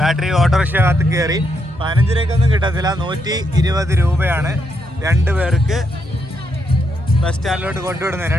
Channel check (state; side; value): normal; both; correlation 0.79